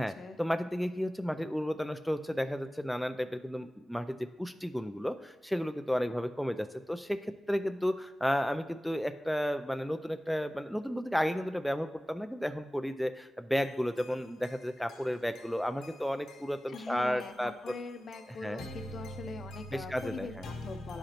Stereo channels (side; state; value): both; normal; correlation 0.96